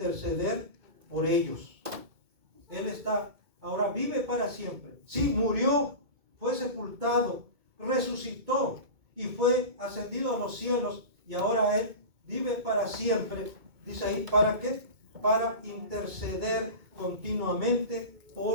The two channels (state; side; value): late; left; 2.2 ms